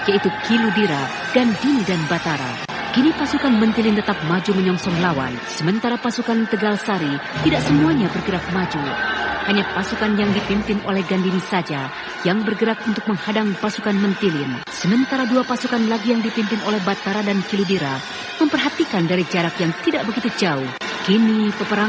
yaitu Kiludira, Gandini, dan Batara. Kini pasukan Mentilin tetap maju menyongsong lawan, sementara pasukan Tegal Sari tidak semuanya bergerak maju. Hanya pasukan yang dipimpin oleh Gandini saja yang bergerak untuk menghadang pasukan Mentilin. Sementara 2 pasukan lagi yang dipimpin oleh Batara dan Kiludira memperhatikan dari jarak yang tidak begitu jauh. Kini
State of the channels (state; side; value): identical; both; correlation 1.00